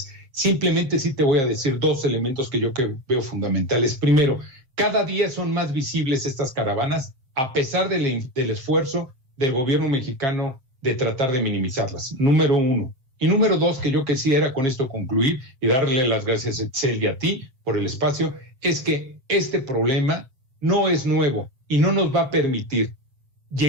Simplemente sí te voy a decir dos elementos que yo veo fundamentales. Primero, cada día son más visibles estas caravanas a pesar del esfuerzo del gobierno mexicano de tratar de minimizarlas. Número uno. Y número dos, que yo quisiera con esto concluir y darle las gracias a Itzel y a ti por el espacio, es que este problema no es nuevo y no nos va a permitir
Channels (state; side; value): late; left; 7.4 ms